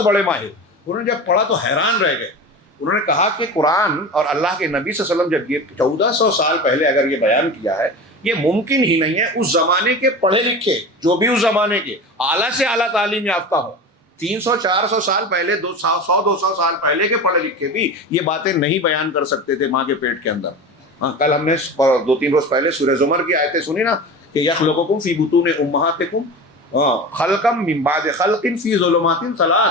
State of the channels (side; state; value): both; normal; correlation 0.30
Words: بڑے ماہر، انہوں نے جب پڑھا تو حیران رہ گئے. انہوں نے کہا کہ قرآن اور اللہ کے نبی صلی اللہ علیہ وسلم جب یہ 1400 سال پہلے اگر یہ بیان کیا ہے، یہ ممکن ہی نہیں ہے اس زمانے کے پڑھے لکھے جو بھی اس زمانے کے اعلیٰ سے اعلیٰ تعلیم یافتہ ہو، 300-400 سال پہلے، 100-200 سال پہلے کے پڑھے لکھے بھی یہ باتیں نہیں بیان کر سکتے تھے ماں کے پیٹ کے اندر. ہاں کل ہم نے 2-3 روز پہلے سورہ زمر کی آیتیں سنی نا کہ یخلقکم فی بطون امہاتکم خلقا من بعد خلق فی ظلمات